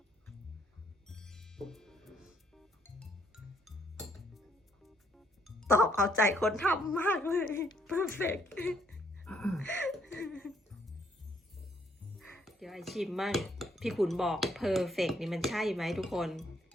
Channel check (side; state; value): both; normal; correlation 0.69